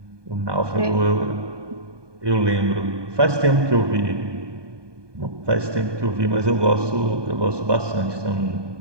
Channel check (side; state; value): left; late; 1.2 ms